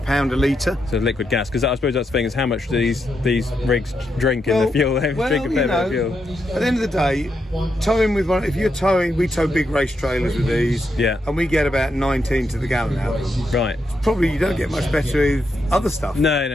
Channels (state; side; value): normal; both; correlation 0.82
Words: a litre. So liquid gas, because I suppose that's the thing, is how much do these rigs drink in the fuel? Drink a fair bit of fuel. At the end of the day, towing with one, if you're towing, we tow big race trailers with these. Yeah. And we get about 19 to the gallon out of them. Right. Probably you don't get much better with other stuff. No.